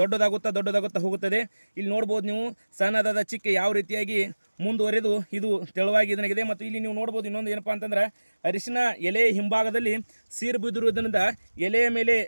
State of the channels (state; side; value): inverted; both; correlation -1.00